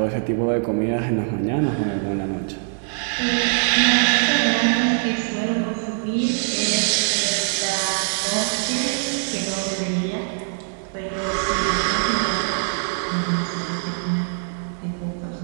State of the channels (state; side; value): silent; left; digital silence